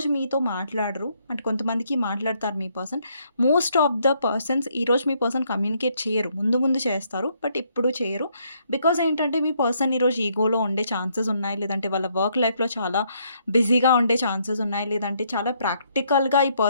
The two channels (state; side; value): inverted; both; correlation -0.71